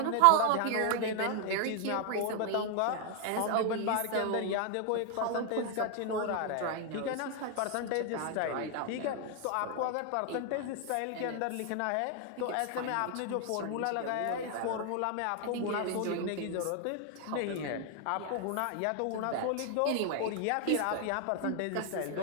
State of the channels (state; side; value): different; both; correlation 0.00